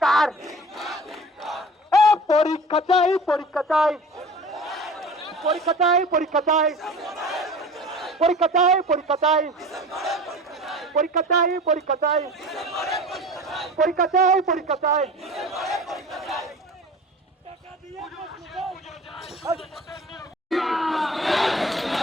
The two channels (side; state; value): both; normal; correlation 0.39